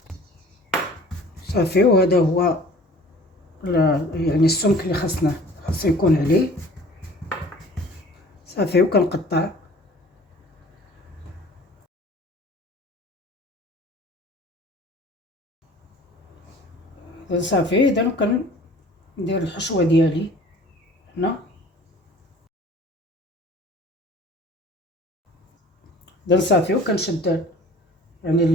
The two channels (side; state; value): both; normal; correlation 0.48